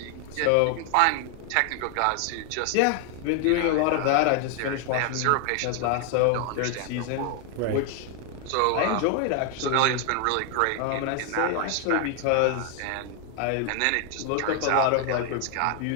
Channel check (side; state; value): both; different; correlation 0.00